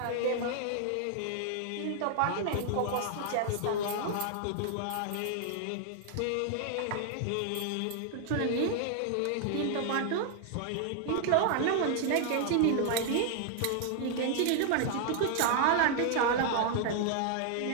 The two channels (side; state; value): both; different; correlation 0.00